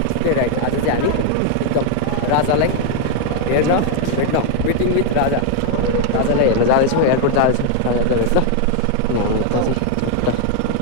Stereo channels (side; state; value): both; different; correlation 0.00